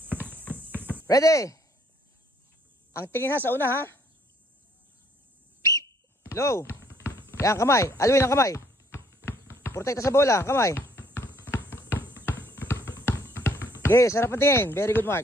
Ready? Ang tingin ha sa una ha. Low. Yan, kamay. Alvin ang kamay. Protekta sa bola, kamay. Sige, sarap ang tingin. Very good,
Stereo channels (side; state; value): both; normal; correlation 0.64